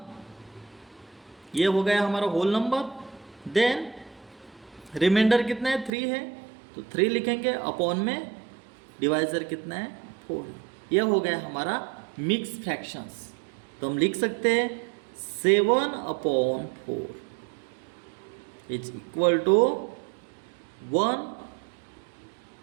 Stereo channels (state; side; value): drops out; left; at 5.9 s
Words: ये हो गया हमारा होल नंबर। देन रिमाइंडर कितना है, 3 है, तो 3 लिखेंगे, अपॉन में डिवाइजर कितना है, 4 है। ये हो गया हमारा मिक्स फ्रैक्शंस। तो हम लिख सकते हैं 7/4 is equal to 1